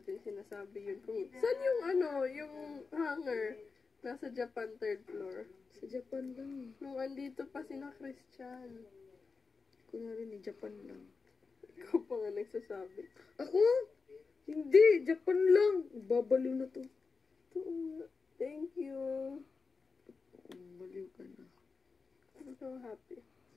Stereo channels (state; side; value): quieter; right; 4.6 dB